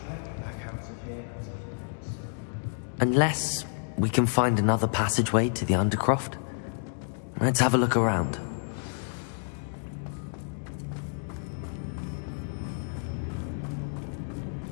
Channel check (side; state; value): right; silent; digital silence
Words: back out of here and to Hogwarts. Unless we can find another passageway to the Undercroft. Let's have a look around.